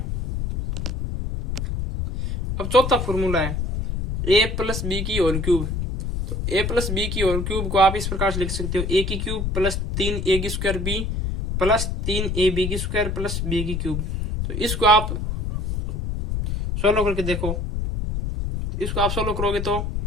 अब चौथा फॉर्मूला है ए प्लस बी की होल क्यूब। तो ए प्लस बी की होल क्यूब को आप इस प्रकार से लिख सकते हो, ए की क्यूब प्लस 3a की स्क्वायर बी प्लस 3ab की स्क्वायर प्लस बी की क्यूब। तो इसको आप सॉल्व करके देखो, इसको आप सोल्व करोगे तो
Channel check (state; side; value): noise; left; rumble, 2 dB below the sound